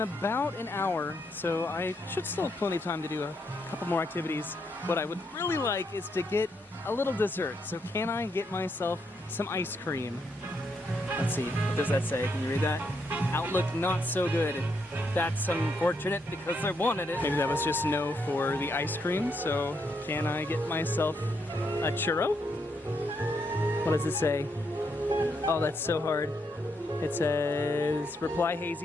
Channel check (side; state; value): both; normal; correlation 0.78